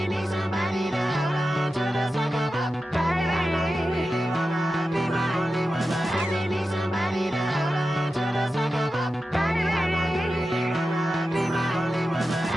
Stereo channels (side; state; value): both; normal; correlation 0.92